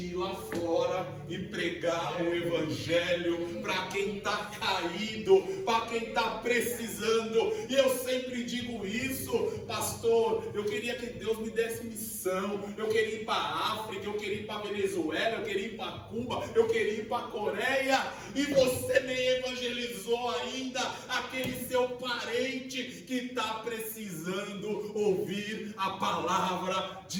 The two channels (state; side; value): identical; both; correlation 1.00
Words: ir lá fora e pregar o evangelho para quem está caído, para quem está precisando. E eu sempre digo isso, pastor, eu queria que Deus me desse missão. Eu queria ir para a África, eu queria ir para a Venezuela, eu queria ir para Cuba, eu queria ir para a Coreia, e você nem evangelizou ainda aquele seu parente que está precisando ouvir a palavra